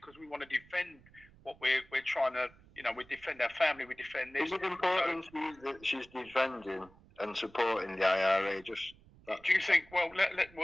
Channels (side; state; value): right; noise; rumble, 26 dB below the sound